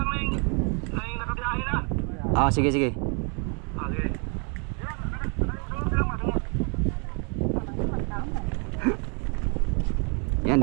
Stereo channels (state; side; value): quieter; left; 36.6 dB